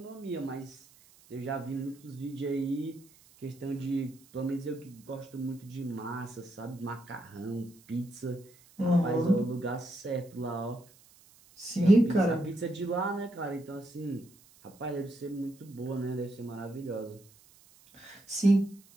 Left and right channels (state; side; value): noise; right; hiss, 26 dB below the sound